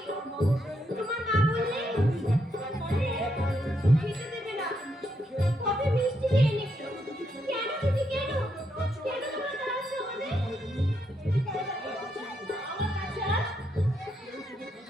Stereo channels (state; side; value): normal; both; correlation 0.79